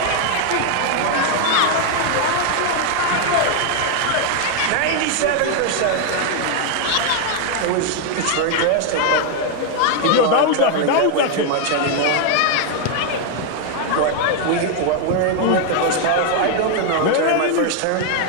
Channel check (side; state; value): both; different; correlation 0.00